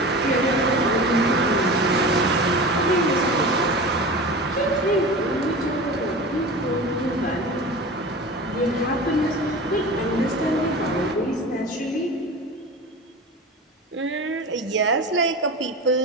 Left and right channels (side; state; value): both; normal; correlation 0.32